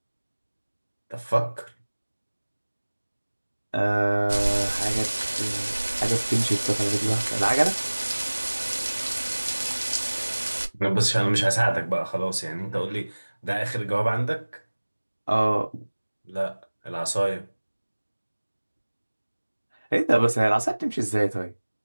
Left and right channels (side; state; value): both; inverted; correlation -1.00